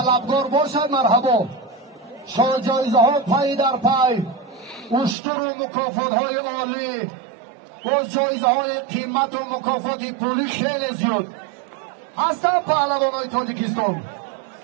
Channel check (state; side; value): drops out; left; at 5.2 s